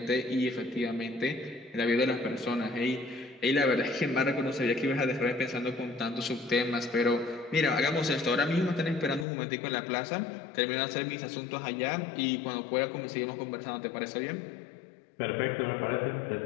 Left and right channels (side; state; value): right; drops out; at 9.2 s